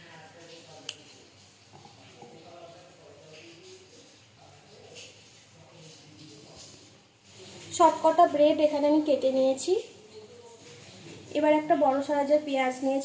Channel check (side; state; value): both; identical; correlation 1.00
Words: সব কটা ব্রেড এখানে আমি কেটে নিয়েছি। এবার একটা বড় সাইজের পেঁয়াজ